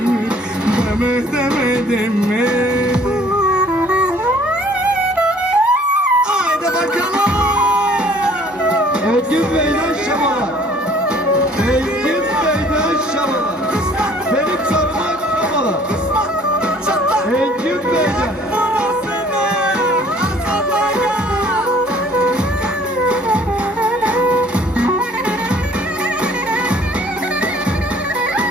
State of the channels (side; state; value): both; normal; correlation 0.56